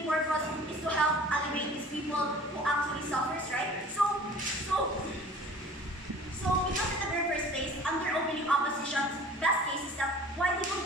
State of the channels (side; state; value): both; normal; correlation 0.46